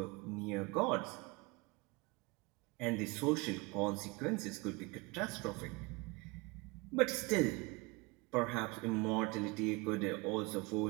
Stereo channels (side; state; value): left; quieter; 26.1 dB